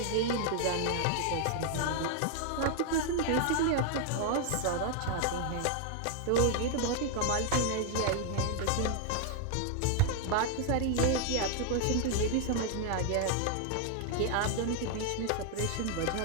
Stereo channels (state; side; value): different; both; correlation 0.00